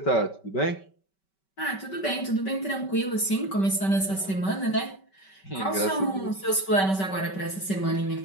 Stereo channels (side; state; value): right; late; 5.2 ms